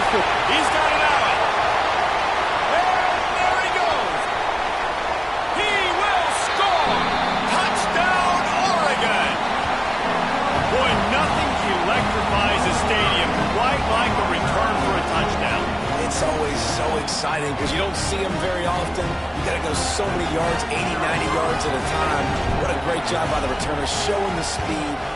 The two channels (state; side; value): identical; both; correlation 1.00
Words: Force. He's got it out. Exciting because you don't see them very often. You got to go so many yards, 80, 90 yards at a time. What a great job by the returners, showing the speed,